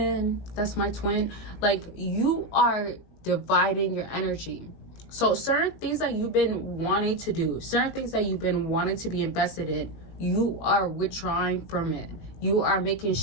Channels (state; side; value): late; right; 19 ms